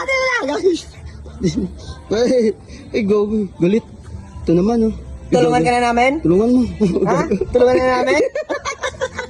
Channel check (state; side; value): identical; both; correlation 1.00